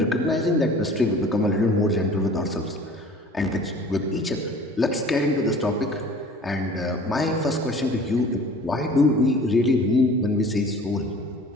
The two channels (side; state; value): both; normal; correlation 0.46